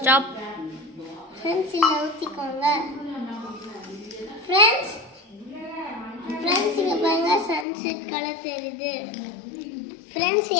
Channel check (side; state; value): right; drops out; at 7.7 s